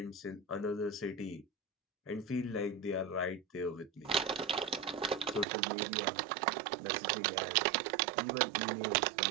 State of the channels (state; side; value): drops out; left; at 5.5 s